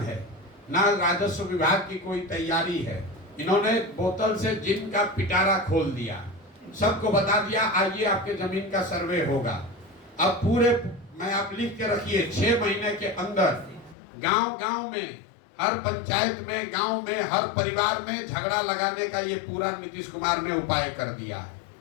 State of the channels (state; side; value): drops out; right; at 14.0 s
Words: है, ना राजस्व विभाग की कोई तैयारी है। इन्होंने बोतल से जिन का पिटारा खोल दिया, सबको बता दिया आइए आपके जमीन का सर्वे होगा। अब पूरे मैं आप लिख के रखिए 6 महीने के अंदर गांव गांव में, हर पंचायत में, गांव में, हर परिवार में झगड़ा लगाने का ये पूरा नीतीश कुमार ने उपाय कर दिया।